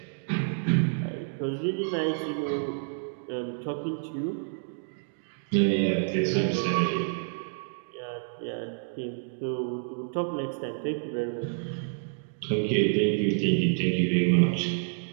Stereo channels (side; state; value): left; silent; digital silence